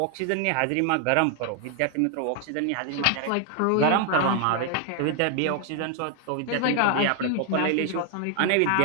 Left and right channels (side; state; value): both; different; correlation 0.00